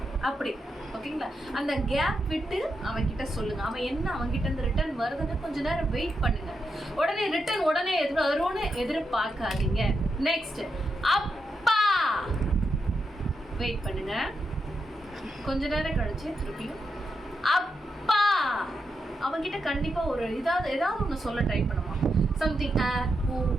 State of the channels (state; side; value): normal; both; correlation 0.85